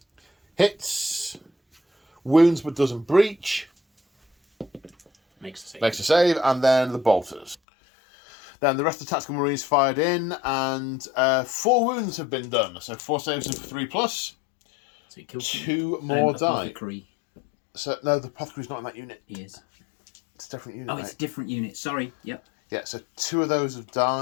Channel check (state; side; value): drops out; right; at 7.6 s